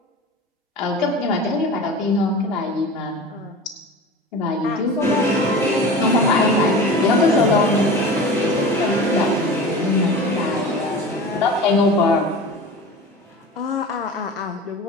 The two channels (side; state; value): both; normal; correlation 0.34